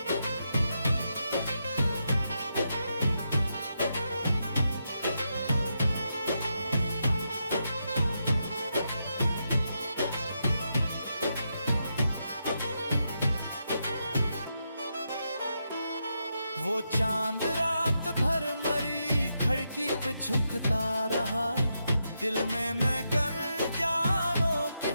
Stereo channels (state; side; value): inverted; both; correlation -0.83